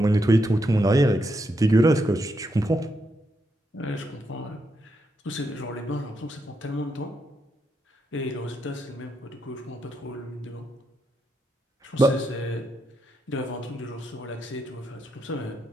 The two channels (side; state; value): both; normal; correlation 0.81